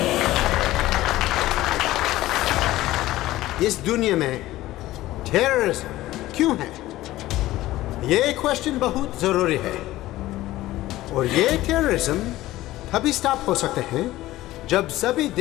इस दुनिया में टेररिज्म क्यों है, ये क्वेश्चन बहुत जरूरी है। और ये टेररिज्म तभी स्टॉप हो सकते हैं जब सभी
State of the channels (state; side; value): quieter; right; 16.2 dB